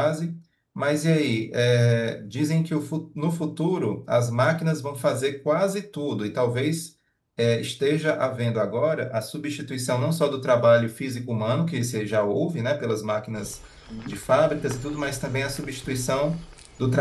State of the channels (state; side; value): identical; both; correlation 1.00